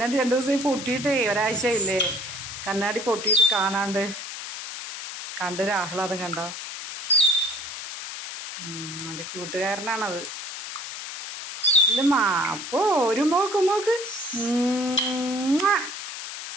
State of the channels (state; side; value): noise; left; hiss, 8 dB below the sound